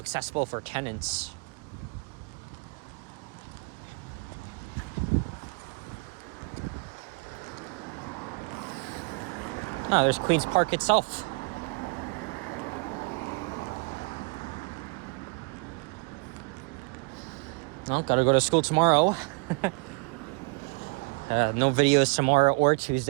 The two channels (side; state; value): left; quieter; 31.5 dB